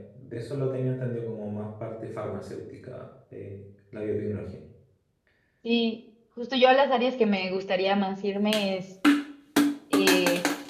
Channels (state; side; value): identical; both; correlation 1.00